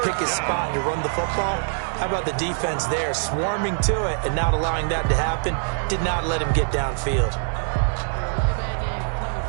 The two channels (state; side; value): silent; left; 63 dB below the other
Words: pick his spot to run the football. How about the defense there, swarming to it and not allowing that to happen? Did not let him get downfield.